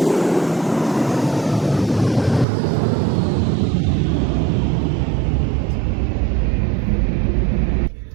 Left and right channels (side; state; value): left; drops out; at 2.5 s